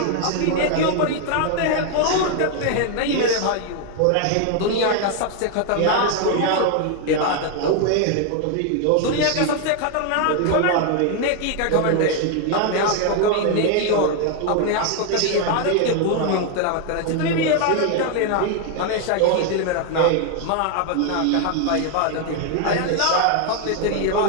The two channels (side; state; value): both; different; correlation 0.00